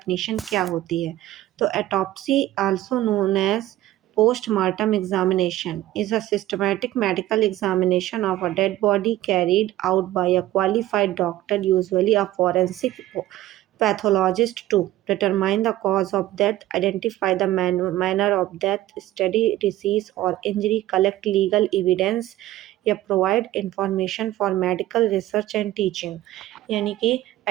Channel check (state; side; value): quieter; left; 14.9 dB